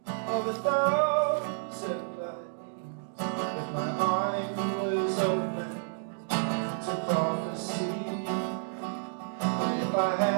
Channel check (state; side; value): silent; left; digital silence